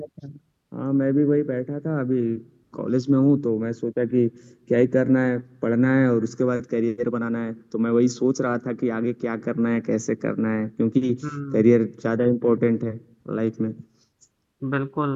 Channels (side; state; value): both; identical; correlation 1.00